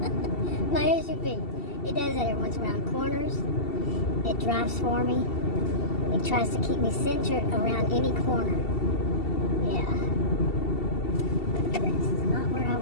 My SUV. It does that every once around corners. It drives for me. It tries to keep me centered around any corner. Yeah. This is not where I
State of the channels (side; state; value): right; late; 2.7 ms